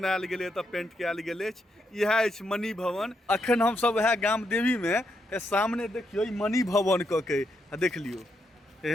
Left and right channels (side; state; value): both; normal; correlation 0.80